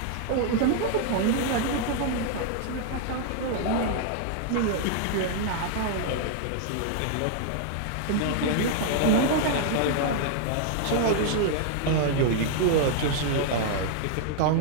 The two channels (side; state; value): both; different; correlation 0.00